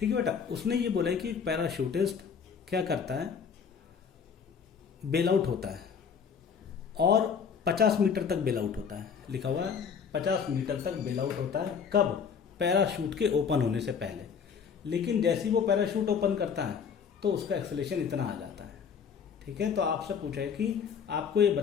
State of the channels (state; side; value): quieter; right; 6.7 dB